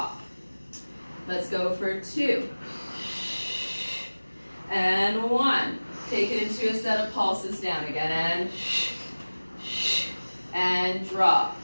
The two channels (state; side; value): inverted; both; correlation -1.00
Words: Let's go for 2. And 1. Take it into a set of pulses down again. And drop.